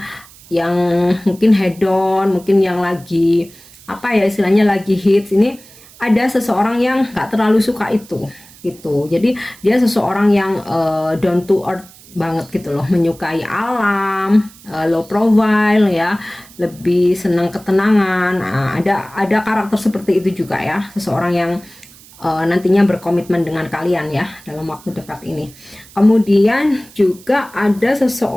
yang mungkin hedon, mungkin yang lagi apa ya istilahnya lagi hits. Ini ada seseorang yang nggak terlalu suka itu gitu. Jadi dia seseorang yang down to earth banget gitu loh, menyukai alam, low profile ya, lebih senang ketenangan. Nah, ada karakter seperti itu juga ya, seseorang yang nantinya berkomitmen dengan kalian ya dalam waktu dekat ini. Kemudian juga ada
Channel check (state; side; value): noise; right; hiss, 23 dB below the sound